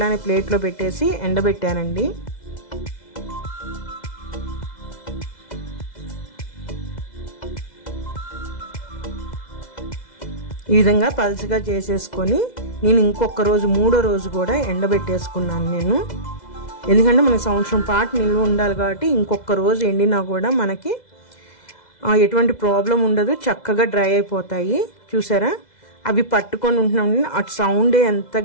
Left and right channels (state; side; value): late; right; 2.0 ms